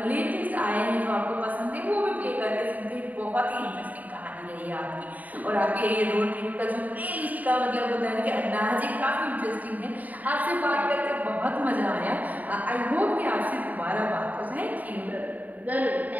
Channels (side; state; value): left; late; 0.076 ms